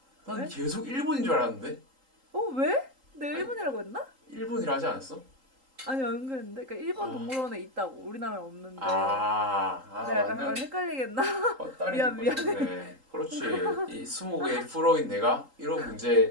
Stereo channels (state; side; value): late; left; 3.8 ms